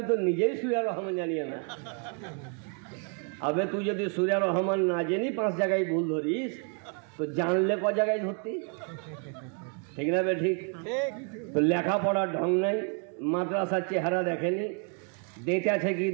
তো নিজেই সূরা রহমান জানি না। আবে তুই যদি সূরা রহমান না জানি 5 জায়গায় ভুল ধরিস, তো জানলে ক জায়গায় ধরতি? ঠিক না বে ঠিক? তো লেখাপড়ার ঢং নাই, মাদ্রাসার চেহারা দেখেনি, দেতে আছে কি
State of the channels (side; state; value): left; quieter; 39.4 dB